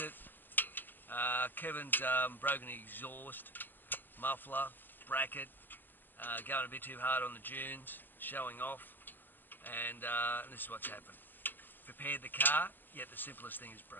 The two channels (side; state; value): right; late; 0.093 ms